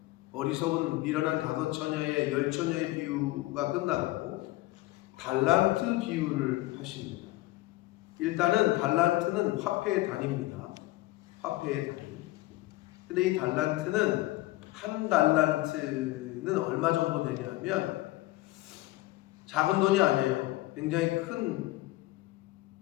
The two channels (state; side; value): quieter; right; 18.7 dB